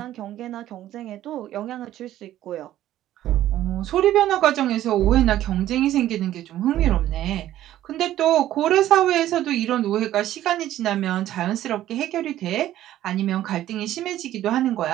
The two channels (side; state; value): left; quieter; 13.2 dB